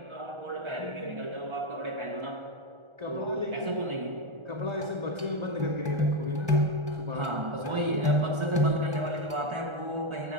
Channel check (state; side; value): late; left; 1.4 ms